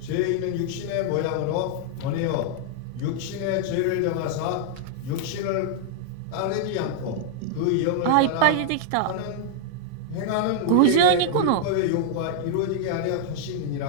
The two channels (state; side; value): different; both; correlation -0.01